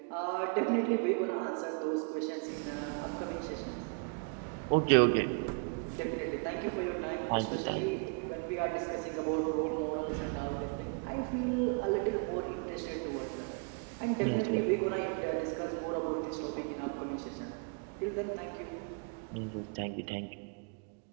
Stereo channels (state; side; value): quieter; left; 37.3 dB